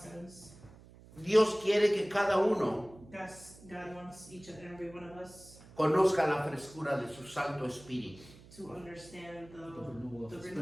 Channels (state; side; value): noise; right; hum, 21 dB below the sound